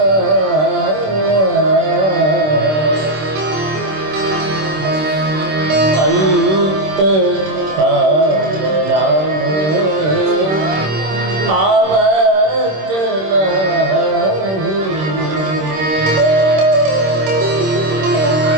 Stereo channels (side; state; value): left; late; 26 ms